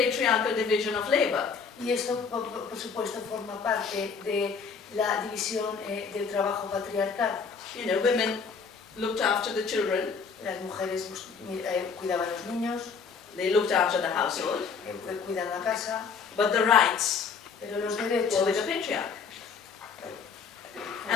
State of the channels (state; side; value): quieter; right; 5.7 dB